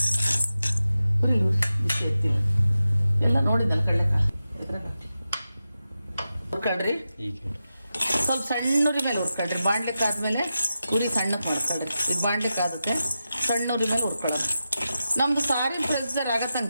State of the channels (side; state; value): both; inverted; correlation -0.91